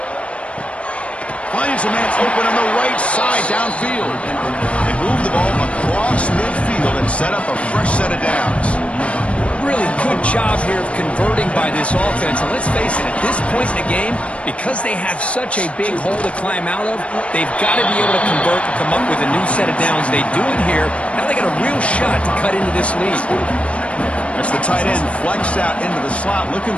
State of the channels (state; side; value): late; right; 0.062 ms